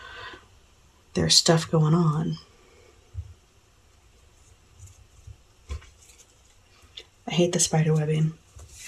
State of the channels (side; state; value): both; identical; correlation 1.00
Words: there's stuff going on. I hate the spider webbing